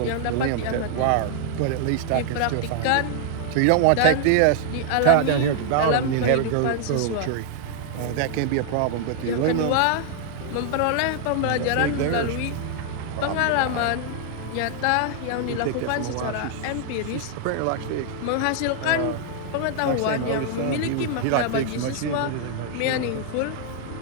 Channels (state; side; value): different; both; correlation 0.00